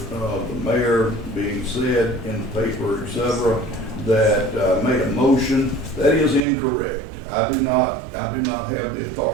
the mayor being said in the paper, etc., that made a motion that is incorrect. I do not have the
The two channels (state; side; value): drops out; left; at 6.4 s